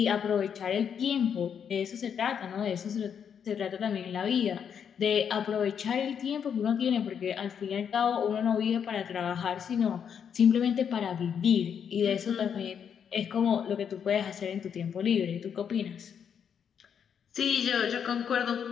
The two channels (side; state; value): right; quieter; 7.7 dB